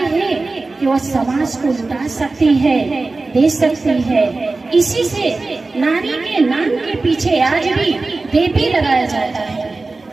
हैं कि वो समाज को लुटा सकती है, दे सकती है। इसी से नारी के नाम के पीछे आज भी देवी लगाया जाता है।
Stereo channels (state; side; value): quieter; left; 3.5 dB